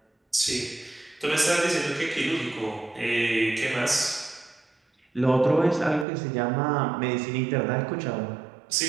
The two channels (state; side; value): drops out; left; at 6.1 s